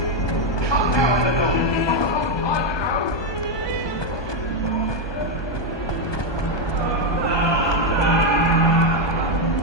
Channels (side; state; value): right; late; 1.2 ms